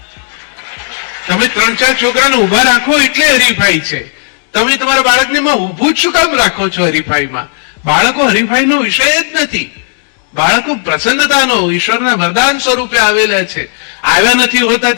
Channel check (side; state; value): right; silent; digital silence